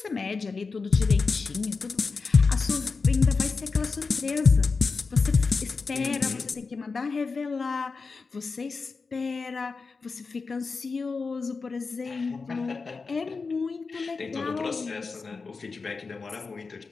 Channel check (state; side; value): quieter; right; 4.5 dB